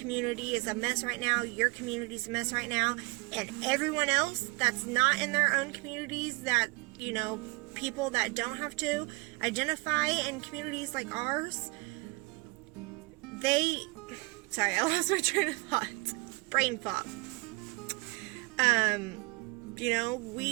is a mess right now, your community's a mess right now, and everyone else that's not in their own communities, that, you know, people that don't have to identify in communities like ours, sorry, I lost my train of thought. Brain fog. You know,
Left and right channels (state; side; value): quieter; left; 28.0 dB